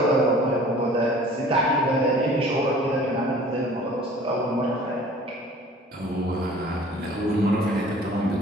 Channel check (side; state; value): both; normal; correlation 0.49